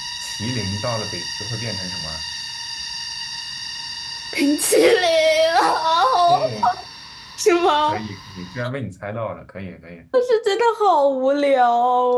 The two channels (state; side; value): identical; both; correlation 1.00